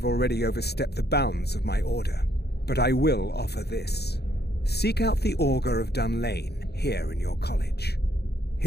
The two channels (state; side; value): late; right; 0.48 ms